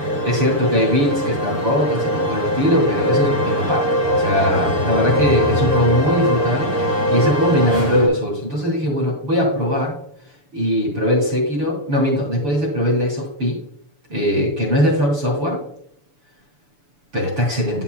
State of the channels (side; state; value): left; late; 6.9 ms